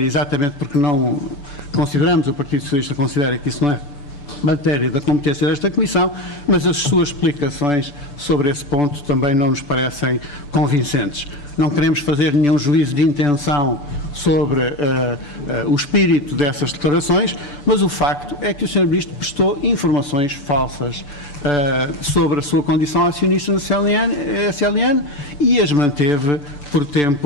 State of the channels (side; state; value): right; late; 6.9 ms